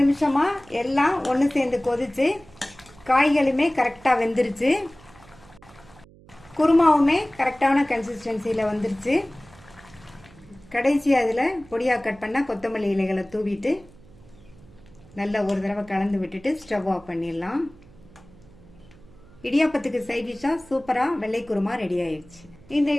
நிமிஷமாக எல்லாம் ஒன்று சேர்ந்து கொதிச்சு காய்களுமே கரெக்டாக வெந்துருச்சு. குருமாவுமே கரெக்டான கன்சிஸ்டன்சியில் வந்துருச்சு. கடைசியாக அதில் பொடியாக கட் பண்ணால் கொத்தமல்லி இலைகளை தூவிட்டு நல்லா ஒரு தடவை கலந்து விட்டுட்டு ஸ்டவ் ஆஃப் பண்ணிடலாம். இடியாப்பத்துக்கு சைட் டிஷ்ஷாக சூப்பராக வெள்ளை குருமா ரெடி ஆயிடுச்சு. இந்த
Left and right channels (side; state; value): right; noise; hum, 24 dB below the sound